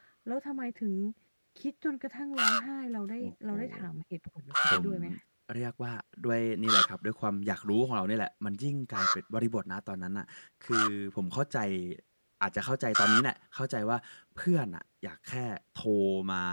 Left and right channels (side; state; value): both; inverted; correlation -1.00